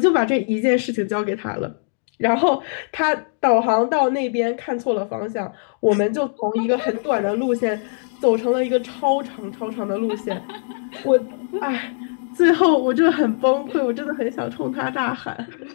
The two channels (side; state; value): right; silent; digital silence